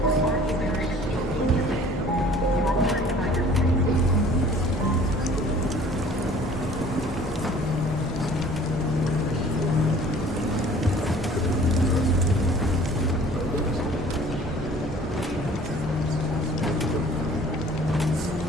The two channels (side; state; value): both; normal; correlation 0.51